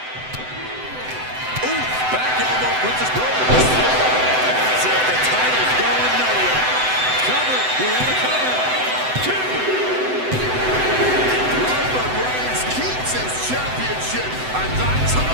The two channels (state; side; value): late; left; 7.9 ms